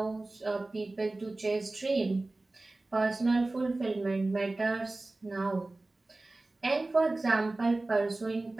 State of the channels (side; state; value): left; quieter; 3.0 dB